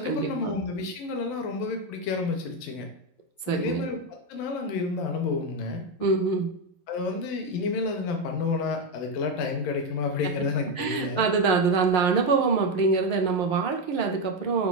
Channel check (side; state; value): right; late; 11 ms